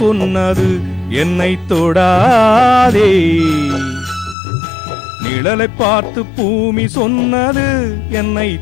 சொன்னது என்னை தொடாதே, நிழலை பார்த்து பூமி சொன்னது என்னை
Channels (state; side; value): drops out; right; at 4.4 s